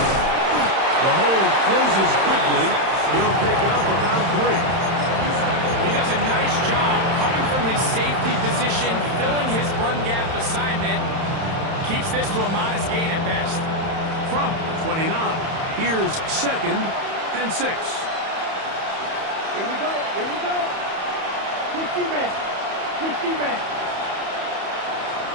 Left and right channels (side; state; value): left; late; 31 ms